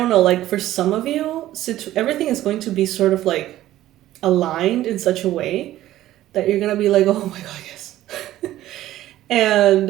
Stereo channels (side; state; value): left; quieter; 14.2 dB